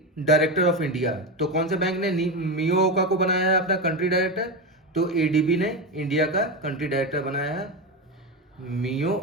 director of India? तो कौन से बैंक ने मियो ओका को बनाया है अपना कंट्री डायरेक्टर? तो ADB ने इंडिया का कंट्री डायरेक्टर बनाया है मियो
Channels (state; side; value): normal; both; correlation 0.16